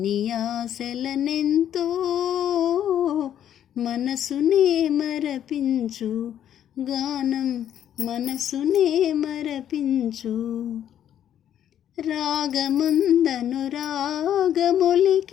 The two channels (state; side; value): quieter; right; 10.3 dB